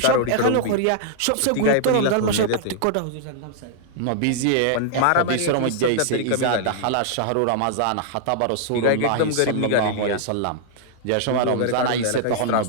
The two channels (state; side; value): different; both; correlation -0.01